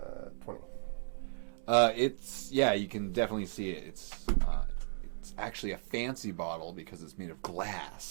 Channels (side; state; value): left; silent; digital silence